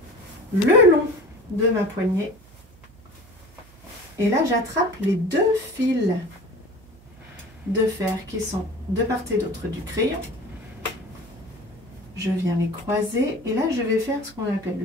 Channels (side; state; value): right; noise; hum, 25 dB below the sound